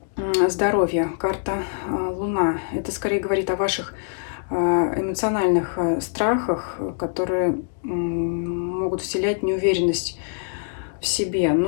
здоровья, карта Луна, это скорее говорит о ваших эмоциональных страхах, которые могут вселять неуверенность в себе.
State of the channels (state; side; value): silent; right; digital silence